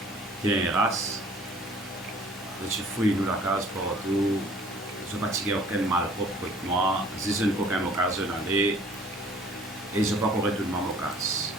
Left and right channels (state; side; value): normal; both; correlation 0.54